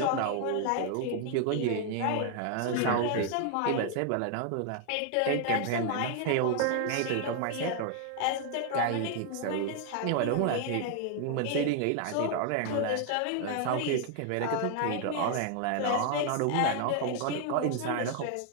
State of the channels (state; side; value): different; both; correlation 0.00